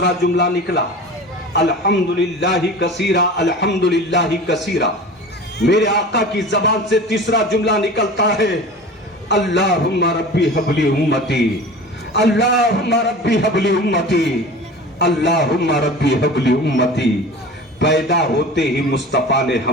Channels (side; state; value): both; normal; correlation 0.37